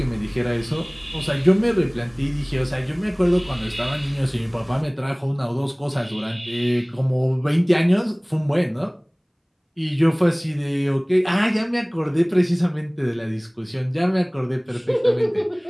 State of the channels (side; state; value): both; identical; correlation 1.00